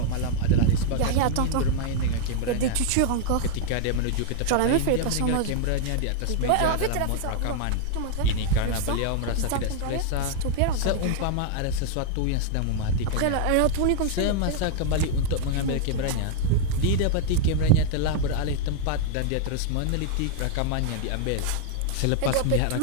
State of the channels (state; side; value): different; both; correlation 0.00